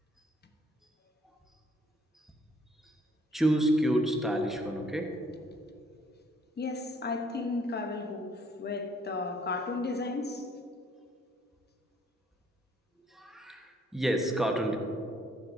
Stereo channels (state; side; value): normal; both; correlation 0.64